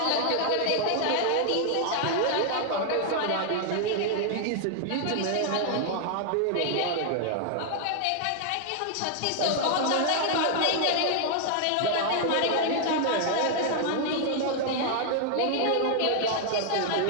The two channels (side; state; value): both; different; correlation 0.00